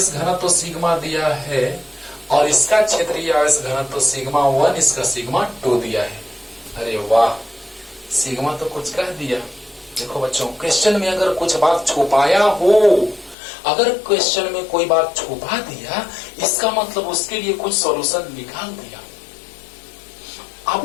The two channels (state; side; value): drops out; right; at 13.4 s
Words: घनत्व सिग्मा दिया है और इसका क्षेत्रीय आवेश घनत्व सिग्मा 1, इसका सिग्मा 2 दिया है। अरे वाह, सिग्मा तो कुछ कह दिया। देखो बच्चों, क्वेश्चन में अगर कुछ बात छुपाया हो, अगर क्वेश्चन में कोई बात छुपा दिया, इसका मतलब उसके लिए कुछ सॉल्यूशन निकाल दिया।